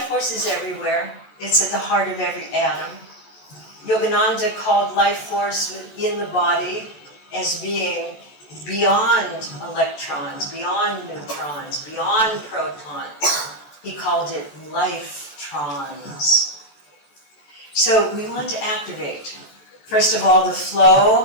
force is everywhere. It's at the heart of every atom. Yogananda called life force within the body as being beyond electrons, beyond neutrons, beyond protons. He called it life-trons. So we want to activate, first of all, the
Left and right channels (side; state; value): right; late; 14 ms